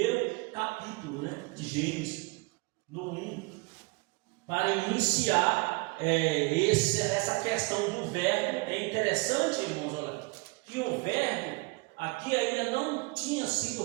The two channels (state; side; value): quieter; left; 27.0 dB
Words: capítulo, né, de Gênesis, no 1, para iniciar essa questão do verbo. É interessante, irmãos, olha, que o verbo aqui ainda não tinha sido